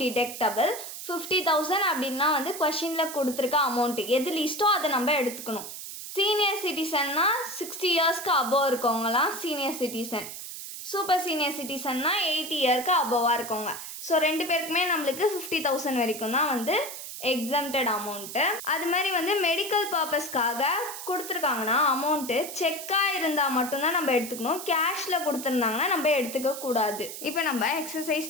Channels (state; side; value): noise; right; hiss, 9 dB below the sound